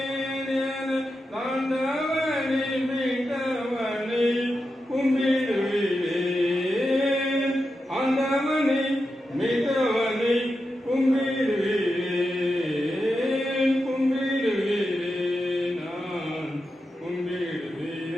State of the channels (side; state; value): both; normal; correlation 0.89